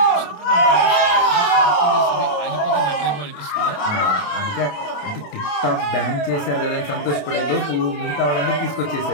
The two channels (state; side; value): late; right; 28 ms